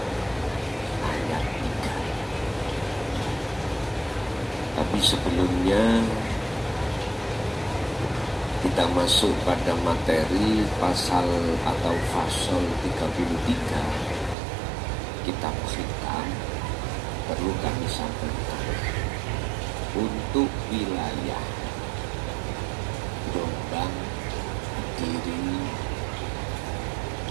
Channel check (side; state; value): left; drops out; at 14.4 s